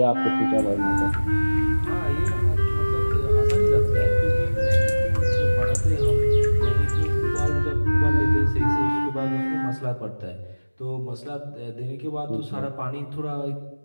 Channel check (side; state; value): both; inverted; correlation -1.00